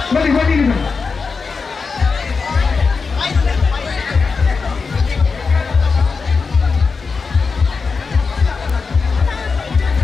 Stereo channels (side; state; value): right; quieter; 4.8 dB